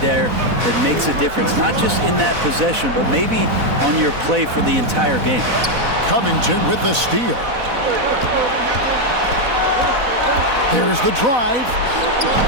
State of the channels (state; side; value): late; left; 4.0 ms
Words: there that makes a difference. Not just in that possession, but maybe on your play for the entire game. Covington with the steal. There's the drive.